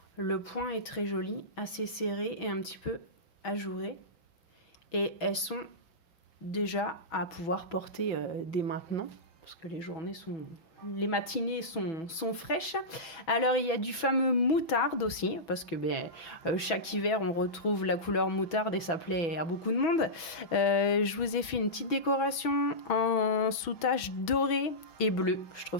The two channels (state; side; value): late; right; 6.1 ms